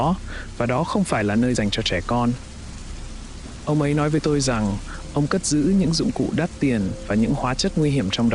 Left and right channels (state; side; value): identical; both; correlation 1.00